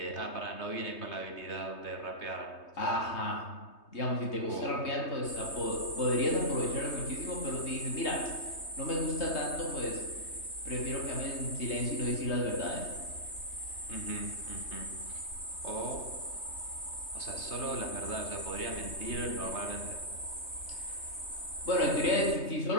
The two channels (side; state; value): right; late; 3.2 ms